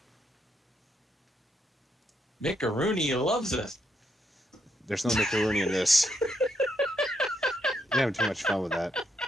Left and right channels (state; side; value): normal; both; correlation 0.77